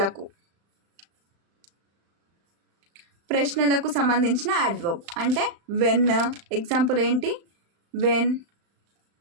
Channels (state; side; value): late; left; 35 ms